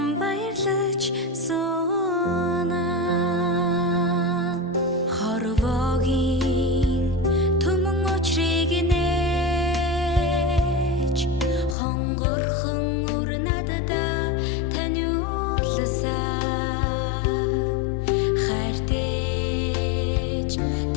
баярлаж суна хорвогийн түмэн очрыг нээж хонгорхон өр надада таниулсан хайртэж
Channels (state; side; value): drops out; right; at 11.8 s